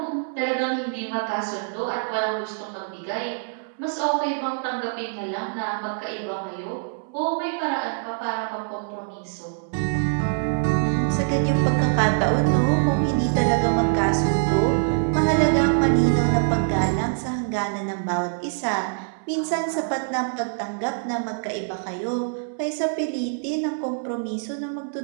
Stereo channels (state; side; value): silent; left; 62 dB below the other